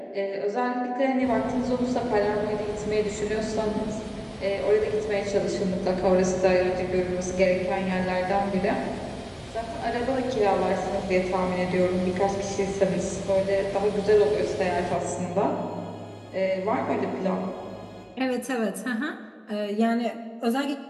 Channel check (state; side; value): identical; both; correlation 1.00